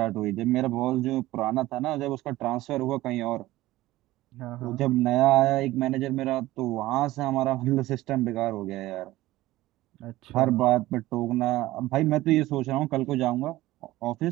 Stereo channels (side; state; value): left; quieter; 17.1 dB